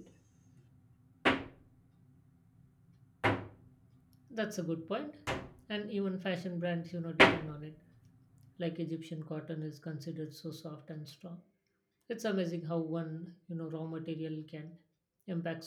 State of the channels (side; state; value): both; identical; correlation 1.00